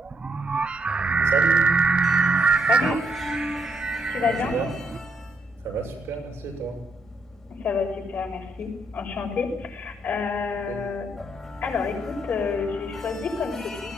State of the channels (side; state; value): both; normal; correlation 0.75